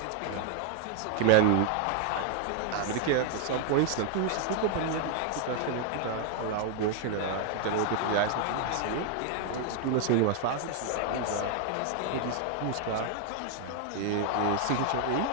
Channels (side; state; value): both; different; correlation 0.00